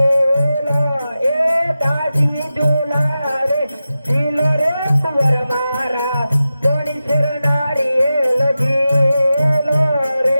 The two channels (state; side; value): inverted; both; correlation -0.93